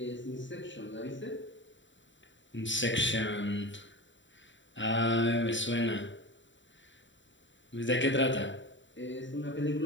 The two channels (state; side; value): late; right; 0.54 ms